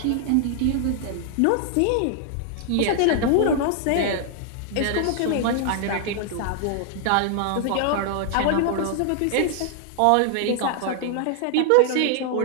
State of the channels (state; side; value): different; both; correlation 0.00